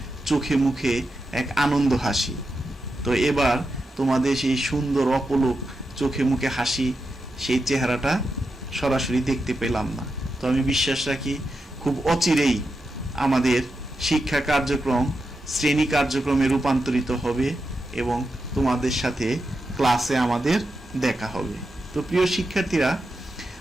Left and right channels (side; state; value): both; normal; correlation 0.88